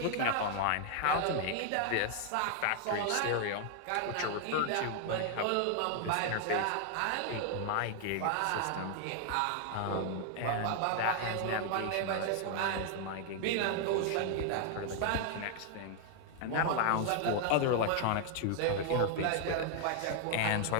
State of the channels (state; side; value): different; both; correlation 0.00